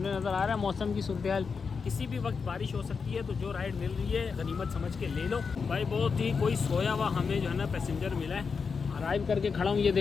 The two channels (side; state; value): right; quieter; 5.4 dB